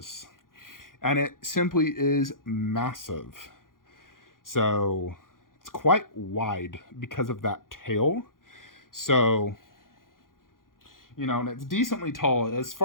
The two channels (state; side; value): late; right; 0.90 ms